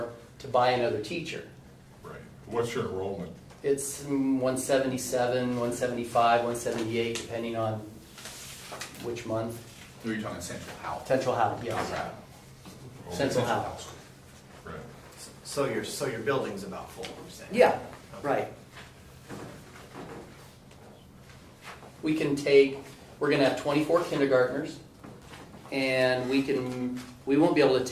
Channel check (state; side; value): identical; both; correlation 1.00